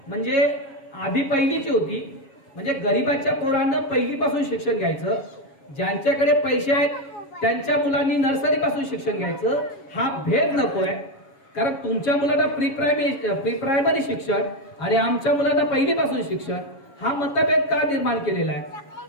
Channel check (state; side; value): late; right; 7.3 ms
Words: म्हणजे आधी पहिलीची होती, म्हणजे गरिबांच्या पोरांना पहिलीपासून शिक्षण घ्यायचं. ज्यांच्याकडे पैसे आहेत त्यांच्या मुलांनी नर्सरी पासून शिक्षण घ्यायचं. हा भेद नकोय. कारण तुमच्या मुलांना प्री प्रायमरी शिक्षण आणि आमच्या मुलांना पहिलीपासून शिक्षण, हा मतभेद का निर्माण केलेला आहे.